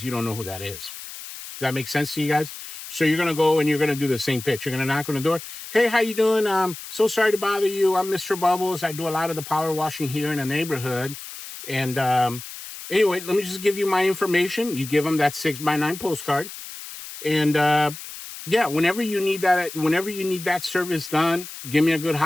you don't know who that is. Does that make sense to you guys? So you're going to go and you're going to do the same pitch. You're going to knock on the door. Hey, how you doing? So sorry to bother you. I'm Mr. Bubbles. I do a lot of the power washing here in the neighborhood. And, anyway, let me just give you my information. You give them that 6x9 postcard. And, yeah, whenever you need that service done, give me a good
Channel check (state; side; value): noise; left; hiss, 12 dB below the sound